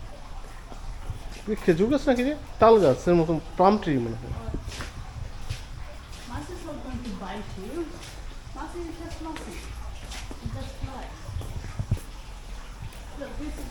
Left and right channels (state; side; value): identical; both; correlation 1.00